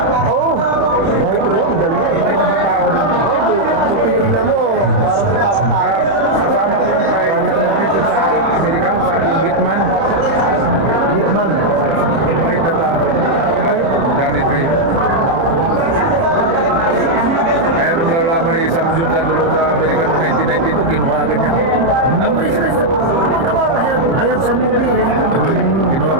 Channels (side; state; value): left; late; 30 ms